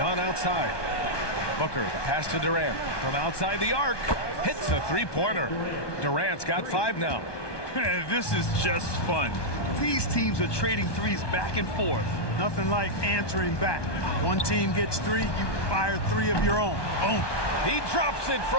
outside. Booker, the pass to Durant. From outside the arc. Hits a three-pointer. Durant's got 5 now. This is just fun. These teams are trading threes back and forth. Nothing like answering back. One team gets 3, you fire 3 of your own. Boom. He drops it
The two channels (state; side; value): late; right; 1.2 ms